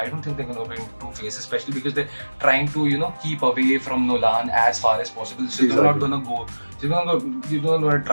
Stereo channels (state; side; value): inverted; both; correlation -1.00